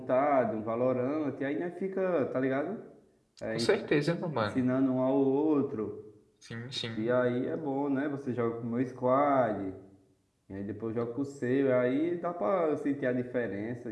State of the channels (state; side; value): identical; both; correlation 1.00